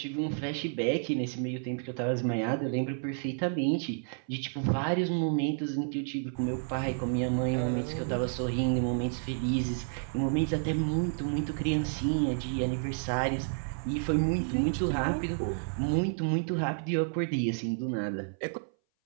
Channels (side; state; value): left; silent; 57 dB below the other